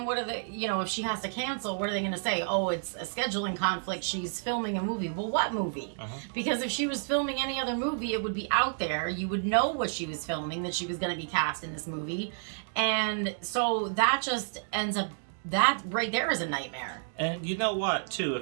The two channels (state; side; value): silent; left; digital silence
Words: what are they, you know, if she has to cancel, what are they going to say? Oh, it's a scheduling conflict. She's filming a movie. Well, what movie? Because if she was filming any other movie, it would be out there. You would know what she was filming, that she was going to be cast in this movie. And so that just ends up, that right there is a nightmare. And you know what, too,